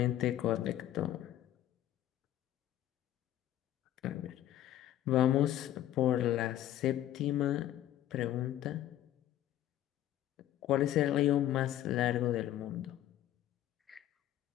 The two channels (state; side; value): quieter; right; 12.7 dB